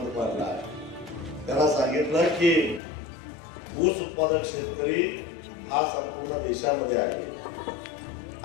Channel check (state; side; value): drops out; right; at 2.8 s